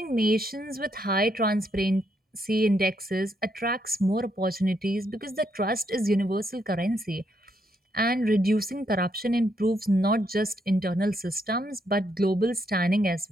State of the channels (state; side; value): normal; both; correlation 0.76